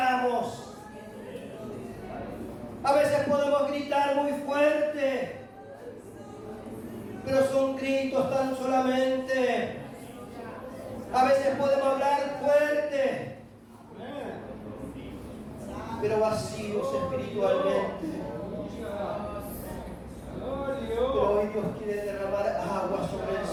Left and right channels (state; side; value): identical; both; correlation 1.00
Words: A veces podemos gritar muy fuerte, pero son gritos tan solamente. A veces podemos hablar fuerte, pero vacíos espiritualmente. Pero hoy Dios quiere derramar agua sobre el